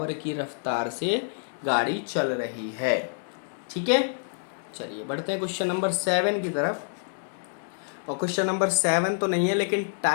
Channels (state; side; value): silent; right; digital silence